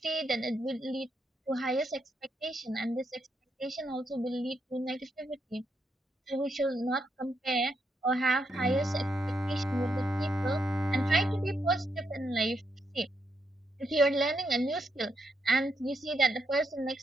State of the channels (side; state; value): both; normal; correlation 0.80